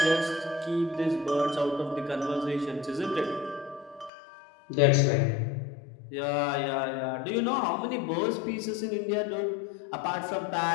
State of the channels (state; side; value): drops out; right; at 4.1 s